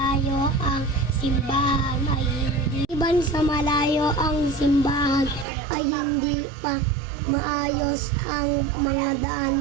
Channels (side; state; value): left; drops out; at 5.5 s